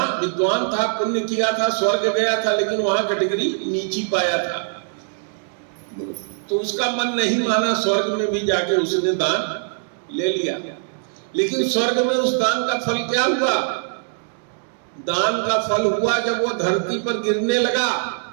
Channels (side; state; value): left; silent; digital silence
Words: विद्वान था, पुण्य किया था, स्वर्ग गया था, लेकिन वहां कैटेगरी नीची पाया था। तो उसका मन नहीं माना, स्वर्ग में भी जाके उसने दान ले लिया। लेकिन स्वर्ग में उस दान का फल क्या हुआ? दान का फल हुआ जब वो धरती पर गिरने लगा